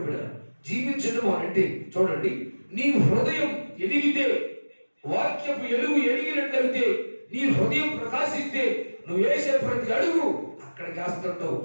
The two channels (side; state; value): both; inverted; correlation -1.00